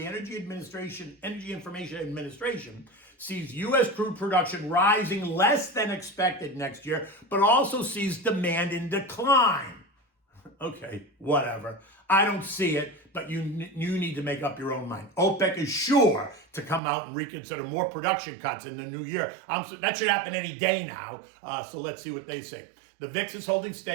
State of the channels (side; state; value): left; drops out; at 16.8 s